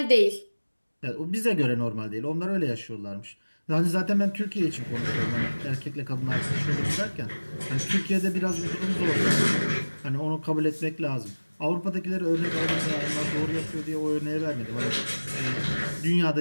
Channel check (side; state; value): both; inverted; correlation -1.00